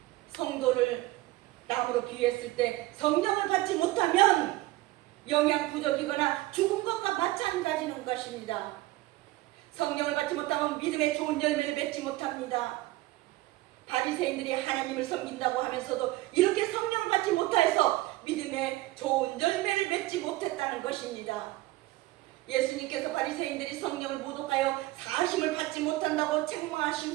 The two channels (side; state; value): left; quieter; 18.4 dB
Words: 성도를 나무로 비유했을 때 성령을 받지 못하면 영양 부족이거나 죽은 것과 마찬가지인 것입니다. 성령을 받지 못하면 믿음의 좋은 열매를 맺지 못합니다. 바리새인들이 하나님을 섬긴다고 하면서도 이렇게 성령을 받지 못해서 믿음의 좋은 열매를 맺지 못했다는 것입니다. 예수님께서 바리새인들이 성령을 모독하여 사심을 받지 못한다고